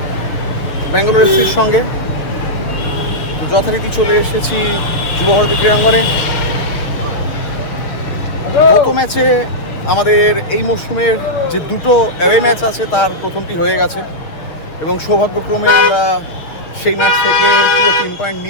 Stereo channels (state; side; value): late; right; 6.7 ms